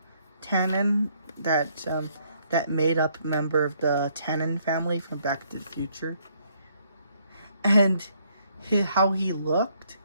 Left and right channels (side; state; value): both; inverted; correlation -0.69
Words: Tannen, that made up member of the Tannen family from Back to the Future, and how he looked,